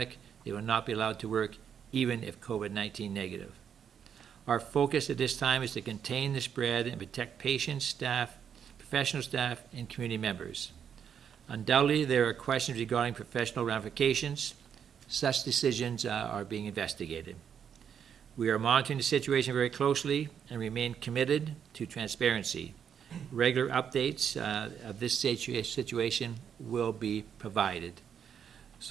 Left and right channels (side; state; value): left; quieter; 8.0 dB